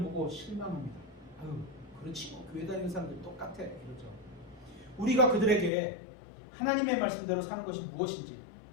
보고 실망합니다. 아유, 그렇지 뭐 교회 다니는 사람들 똑같아 이러죠. 우리가 그들에게 하나님의 말씀대로 사는 것이 무엇인지,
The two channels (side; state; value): right; drops out; at 5.7 s